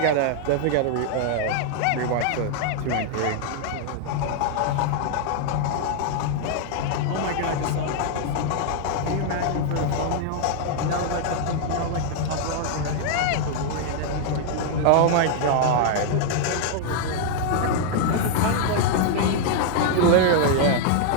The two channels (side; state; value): both; different; correlation 0.00